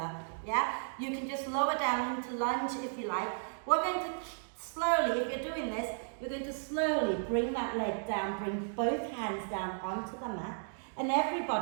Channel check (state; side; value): silent; left; digital silence